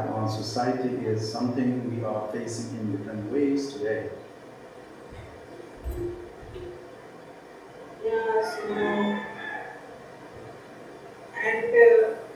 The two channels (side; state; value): both; identical; correlation 1.00